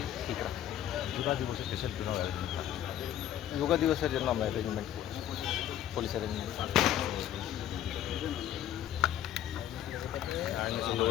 ঠিক রাখতে। যোগা দিবসের দেশের জন্য যোগা দিবসের জন্য আমরা অ্যারেঞ্জমেন্ট করছি, পুলিশ অ্যারেঞ্জমেন্ট।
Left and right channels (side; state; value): right; quieter; 11.3 dB